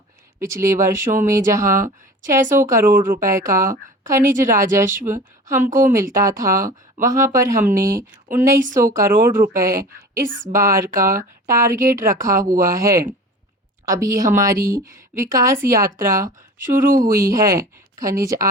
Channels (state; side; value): normal; both; correlation 0.39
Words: पिछले वर्षों में जहां 600 करोड़ रुपए का खनिज राजस्व हमको मिलता था, वहां पर हमने 1900 करोड़ रुपए इस बार का टारगेट रखा हुआ है। अभी हमारी विकास यात्रा शुरू हुई है। खनिज